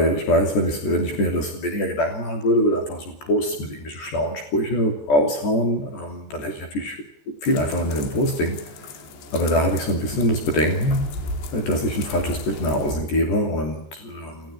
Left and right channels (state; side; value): late; right; 14 ms